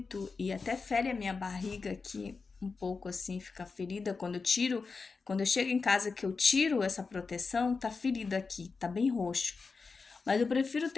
e até fere a minha barriga aqui um pouco assim, fica ferida quando eu chego em casa que eu tiro essa proteção, tá ferida aqui, tá bem roxo. Mas eu prefiro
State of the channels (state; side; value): quieter; right; 4.6 dB